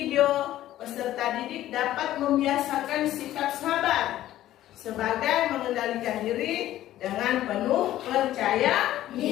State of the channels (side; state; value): right; quieter; 13.7 dB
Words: peserta didik dapat membiasakan sikap sabar sebagai mengendalikan diri dengan penuh percaya